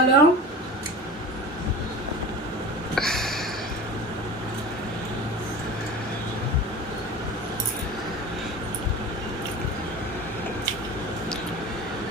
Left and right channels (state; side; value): normal; both; correlation 0.35